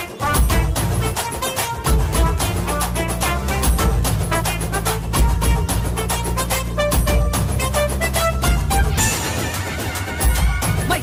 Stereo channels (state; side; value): identical; both; correlation 1.00